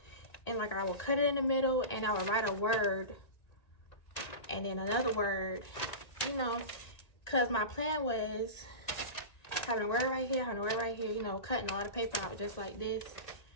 and like I would cut it in the middle and I would write a word and then another word, you know, because my plan was having a word right here, having a word right here, you know, cutting a lot of paper out just like this,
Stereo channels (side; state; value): right; late; 1.9 ms